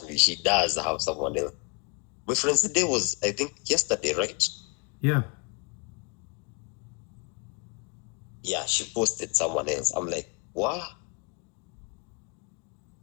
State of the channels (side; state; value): right; quieter; 34.4 dB